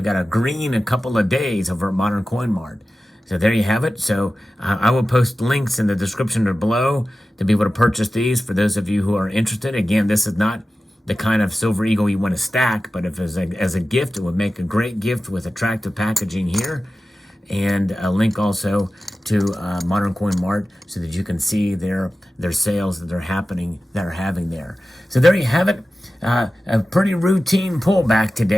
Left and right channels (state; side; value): normal; both; correlation 0.95